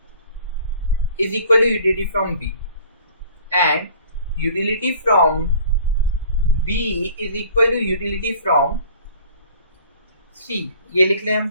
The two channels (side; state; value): both; inverted; correlation -0.50